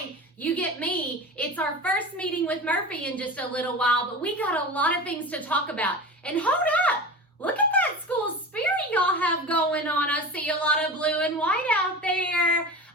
you get me. It's our first meeting with Murphy in just a little while, but we got a lot of things to talk about. And hold up! Look at that school spirit y'all have going on. I see a lot of blue and white out there.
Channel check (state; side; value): normal; both; correlation 0.31